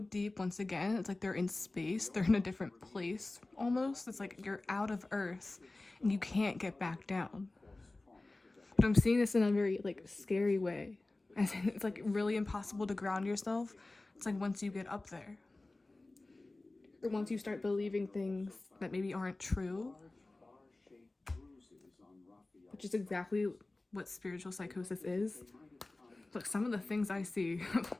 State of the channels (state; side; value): quieter; right; 3.0 dB